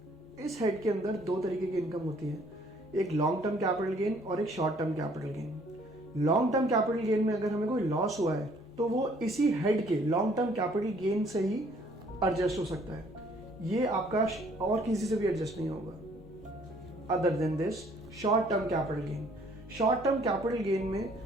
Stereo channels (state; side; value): normal; both; correlation 0.61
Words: इस हेड के अंदर दो तरीके की इनकम होती है, एक लॉन्ग टर्म कैपिटल गेन और एक short term capital gain. Long term capital gain में अगर हमें कोई लॉस हुआ है तो वो इसी हेड के लॉन्ग टर्म कैपिटल गेन से ही एडजस्ट हो सकता है, ये आपका और किसी से भी एडजस्ट नहीं होगा। Other than this short term capital gain, short term capital gain